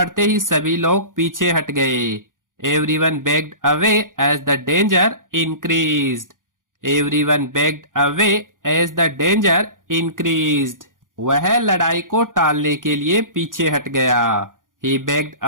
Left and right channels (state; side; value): late; left; 0.89 ms